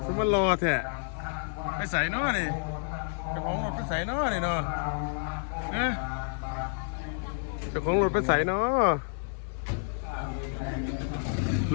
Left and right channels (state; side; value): silent; right; 58 dB below the other